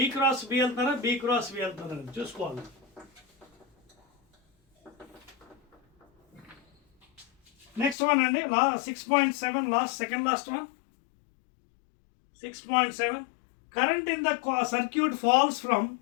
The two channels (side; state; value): right; drops out; at 8.0 s